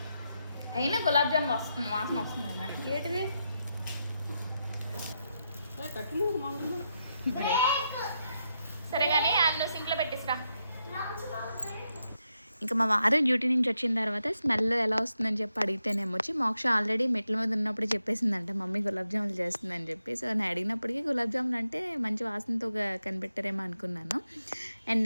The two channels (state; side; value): inverted; both; correlation -0.84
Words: అయినా గులాబ్ జామ్ వస్తుంది, వాసన వస్తుంది కదా. ఏంటిది? సరే కానీ అందులో సింక్లో పెట్టిస్తా. ఇంకా మా వారు డ్యూటీ నుంచి వచ్చిన తర్వాత స్మెల్ ఎలా వస్తుందని చెప్పి అడిగితేనేమో వచ్చి మోక్ష ఆల్రెడీ మెట్ల మీద ఉన్నప్పుడు చెప్పేసిందంట మమ్మీ గులాబ్ జాములు చేస్తుందని చెప్పి. సో నేను అడిగినప్పటికీ గులాబ్ జాములు అంటే మంచి వాసనతో కనిపెట్టారేమో అనుకున్నాను. అండ్